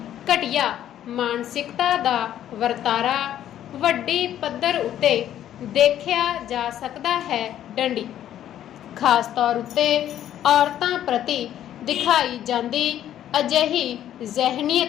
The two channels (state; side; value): quieter; right; 11.3 dB